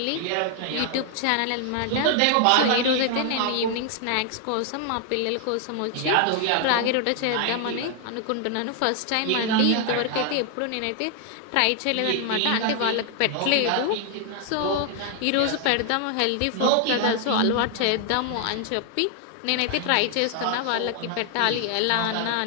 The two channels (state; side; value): different; both; correlation 0.00